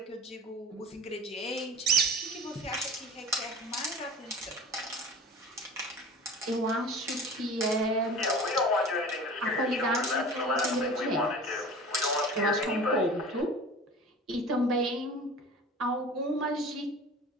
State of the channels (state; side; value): normal; both; correlation 0.38